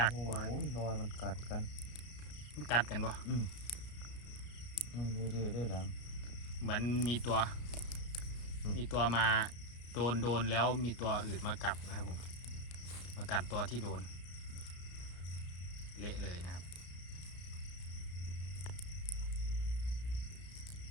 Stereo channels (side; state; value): right; late; 33 ms